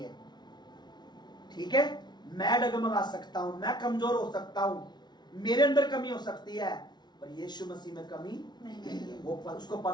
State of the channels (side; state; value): right; late; 0.20 ms